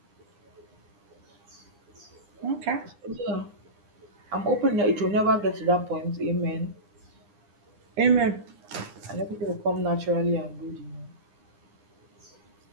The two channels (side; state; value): left; late; 9.8 ms